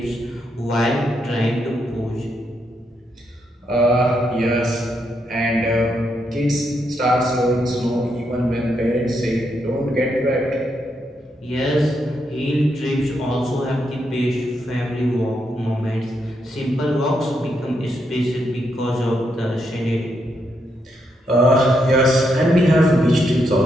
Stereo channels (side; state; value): both; normal; correlation 0.80